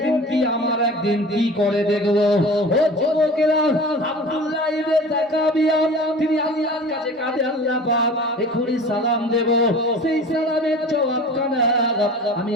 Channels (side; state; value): both; normal; correlation 0.39